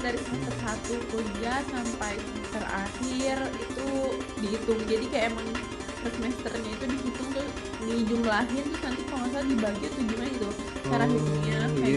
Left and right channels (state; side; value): identical; both; correlation 1.00